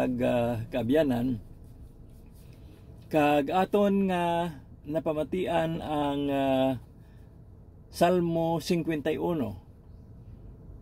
kaabyanan kag aton nga napamatian ang Salmo 51.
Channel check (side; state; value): both; identical; correlation 1.00